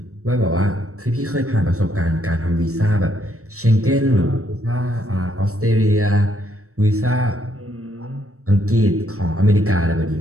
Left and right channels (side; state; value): left; late; 0.64 ms